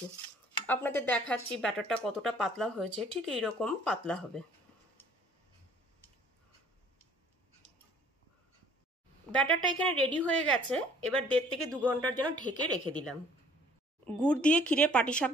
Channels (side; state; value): both; normal; correlation 0.56